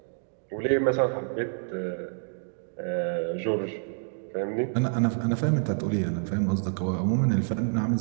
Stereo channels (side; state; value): left; silent; digital silence